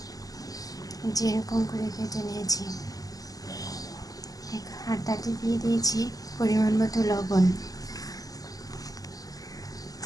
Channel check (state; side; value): late; right; 0.17 ms